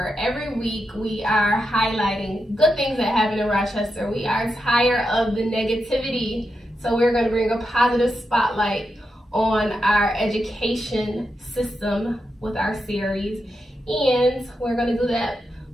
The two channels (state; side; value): normal; both; correlation 0.86